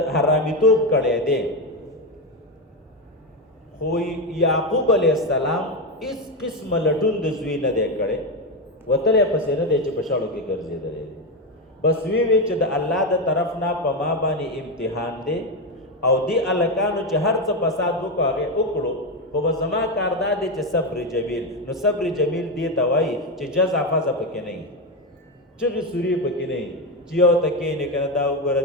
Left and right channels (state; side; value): normal; both; correlation 0.11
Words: حرامیتوب کړی دی، خو یعقوب علیه السلام هېڅ قسمه لټون د زوی نه دی کړی، وتلی پسې نه دی چې په شاړو کې ګرځېدلی دی. بس وی چې د الله د طرف نه په ما باندې امتحان دی او دی هلکانو چې هر څه فساد وکړو هغې وکړو، خو زما کار دا دی چې صبر جمیل. نو صبر جمیل دې ته وایي چې جزع فزع پکې نه وي، چغې سورې پکې نه وي، چې یو ته کښېنې که نه دا وګوره